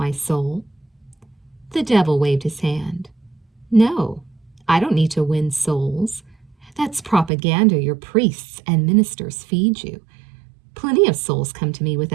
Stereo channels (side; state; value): left; drops out; at 7.3 s